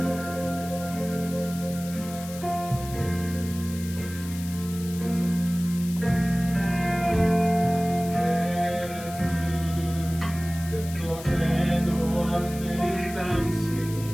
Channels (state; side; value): noise; left; hiss, 14 dB below the sound